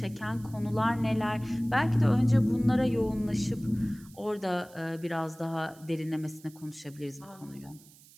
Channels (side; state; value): right; noise; hiss, 24 dB below the sound